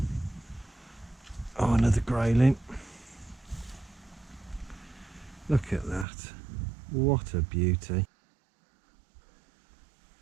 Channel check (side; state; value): left; drops out; at 6.1 s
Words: Oh, another grayling. Look at that. What a beauty.